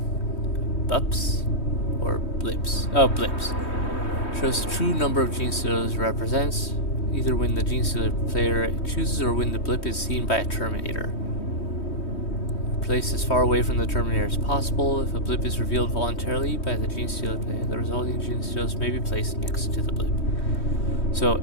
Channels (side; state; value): right; late; 3.2 ms